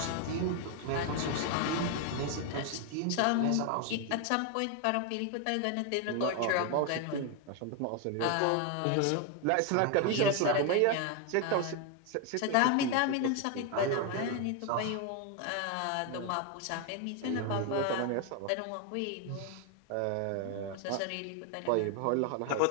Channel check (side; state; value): both; different; correlation 0.01